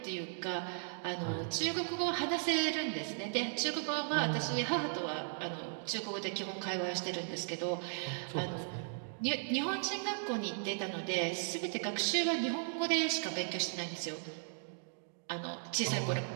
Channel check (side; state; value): left; silent; digital silence